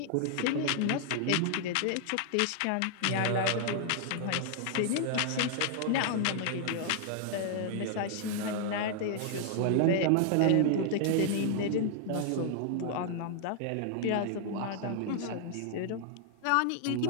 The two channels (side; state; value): both; different; correlation 0.00